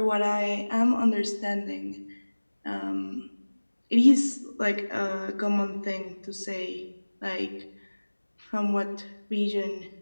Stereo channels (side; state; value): both; inverted; correlation -1.00